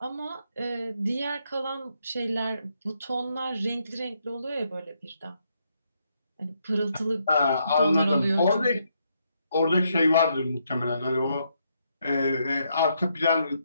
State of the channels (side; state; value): both; inverted; correlation -0.77